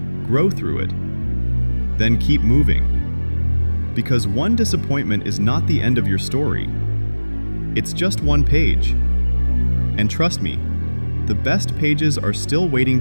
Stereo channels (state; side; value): inverted; both; correlation -1.00